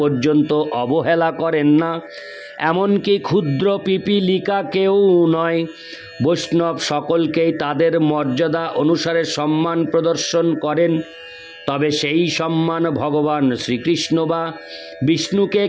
পর্যন্ত অবহেলা করেন না, এমনকি ক্ষুদ্র পিপীলিকাকেও নয়। বৈষ্ণব সকলকেই তাদের মর্যাদা অনুসারে সম্মান প্রদর্শন করেন। তবে সেই সম্মান ভগবান শ্রীকৃষ্ণ বা বিষ্ণুকে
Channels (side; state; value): both; identical; correlation 1.00